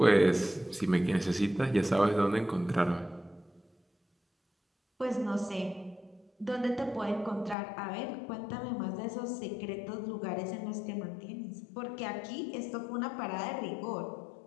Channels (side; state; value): right; drops out; at 7.6 s